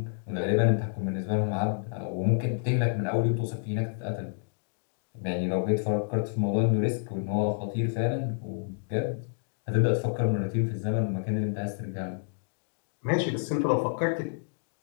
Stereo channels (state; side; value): silent; right; digital silence